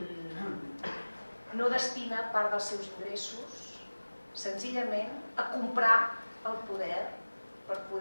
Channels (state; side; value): inverted; both; correlation -1.00